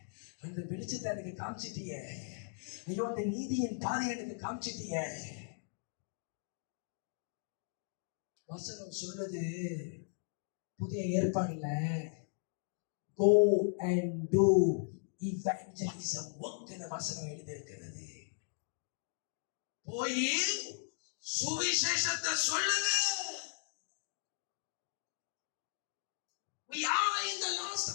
அந்த வெளிச்சத்தை எனக்கு காமிச்சிட்டிய, ஐயோ அந்த நீதியின் பாதையை எனக்கு காமிச்சிட்டிய. வசனம் சொல்றது புதிய ஏற்பாடுல go and do evangelism work ன்னு வசனம் எழுதி இருக்கிறது. போய் சுவிசேஷத்தை சொல்லுங்க. We are in the last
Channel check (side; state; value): right; silent; digital silence